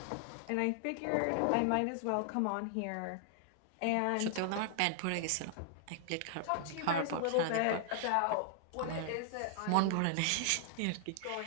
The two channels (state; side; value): different; both; correlation 0.00